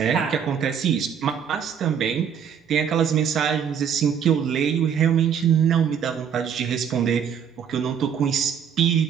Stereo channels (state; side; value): quieter; left; 7.9 dB